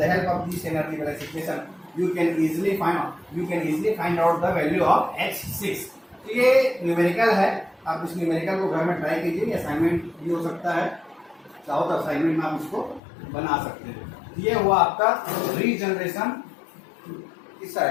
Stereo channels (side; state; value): right; drops out; at 13.0 s